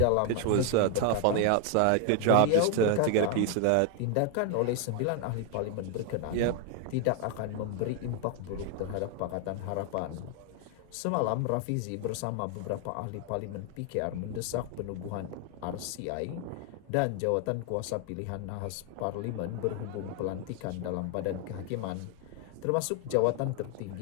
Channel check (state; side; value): different; both; correlation 0.01